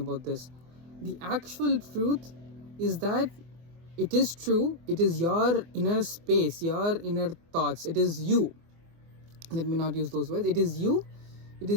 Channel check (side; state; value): left; late; 24 ms